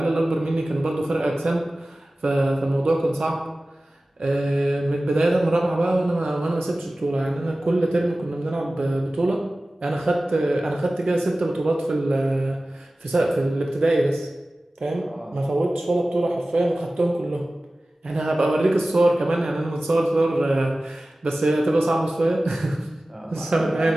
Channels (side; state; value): both; normal; correlation 0.97